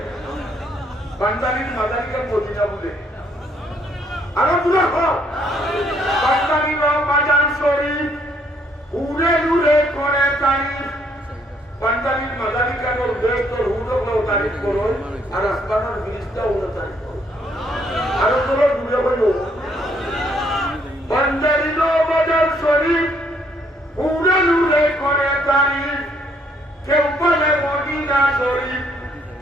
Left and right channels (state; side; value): normal; both; correlation 0.68